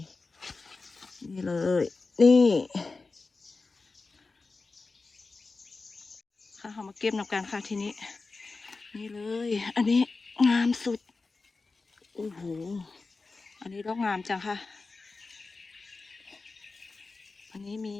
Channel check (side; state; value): right; quieter; 3.9 dB